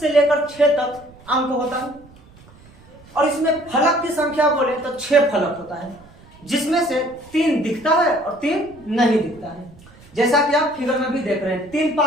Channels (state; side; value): noise; right; rumble, 24 dB below the sound